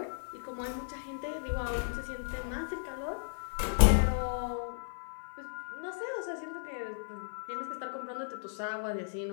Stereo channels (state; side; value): silent; right; 54 dB below the other